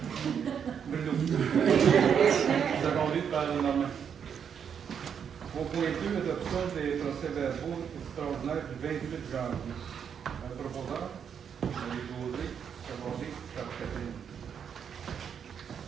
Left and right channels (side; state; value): left; quieter; 7.6 dB